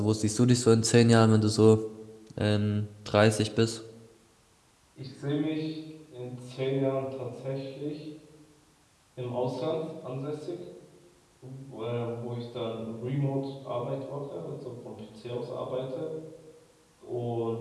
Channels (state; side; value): identical; both; correlation 1.00